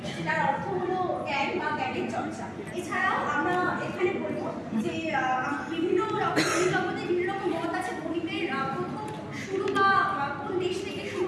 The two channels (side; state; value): both; identical; correlation 1.00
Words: যেটার অর্থ হলো জ্ঞান বা জ্ঞানের চর্চা। এছাড়াও আমরা এখানে বলবো যে বিভিন্ন রকম জগতে বিভিন্ন রকম মত আছে গণিতের প্রথম শুরু বা কোন দেশ থেকে শুরু